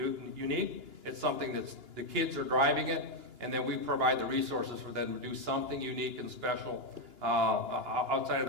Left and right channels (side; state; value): left; late; 2.9 ms